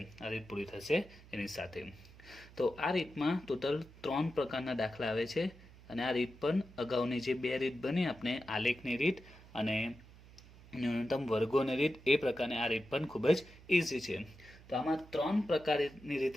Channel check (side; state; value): right; noise; hum, 21 dB below the sound